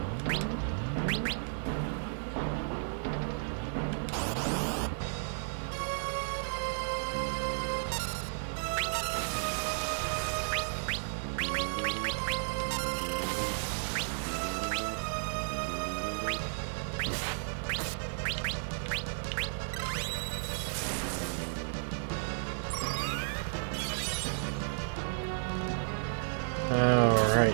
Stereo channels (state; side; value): silent; left; 56 dB below the other